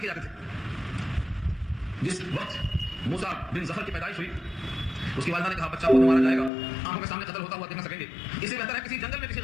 جاتے تھے. جس وقت موسیٰ بن ظفر کی پیدائش ہوئی اس کی والدہ نے کہا بچہ کو مارا جائے گا، آنکھوں کے سامنے قتل ہوتا ہوا دیکھ نہ سکیں گے، اس سے بہتر ہے کسی جنگل میں کسی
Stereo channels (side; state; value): right; drops out; at 6.5 s